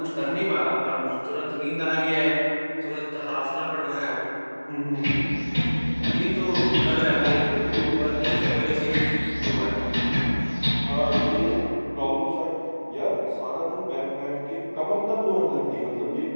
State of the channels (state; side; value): inverted; both; correlation -1.00